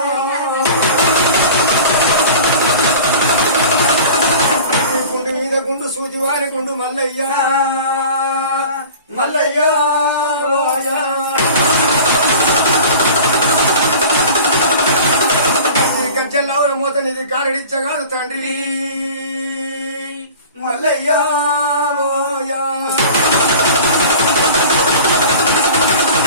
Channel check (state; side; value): inverted; both; correlation -0.40